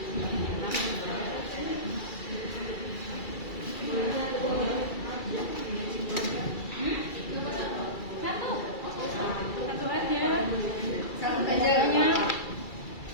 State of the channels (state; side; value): late; right; 2.3 ms